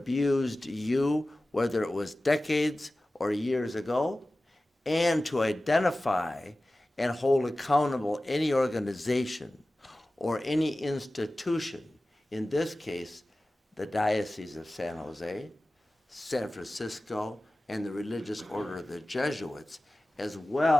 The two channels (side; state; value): both; normal; correlation 0.96